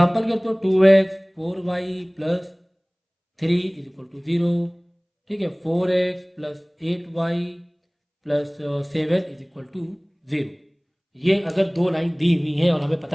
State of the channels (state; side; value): identical; both; correlation 1.00